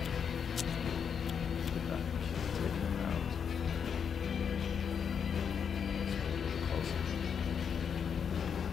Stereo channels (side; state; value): right; quieter; 7.1 dB